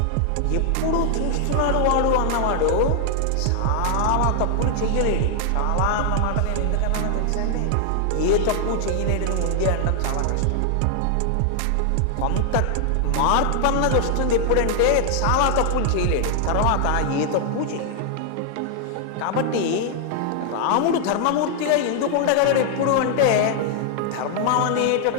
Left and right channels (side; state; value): both; different; correlation 0.00